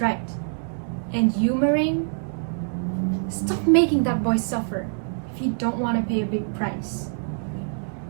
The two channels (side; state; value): left; silent; digital silence